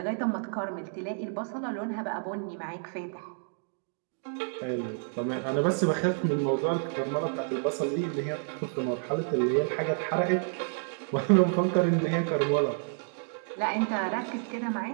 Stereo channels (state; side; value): silent; left; 58 dB below the other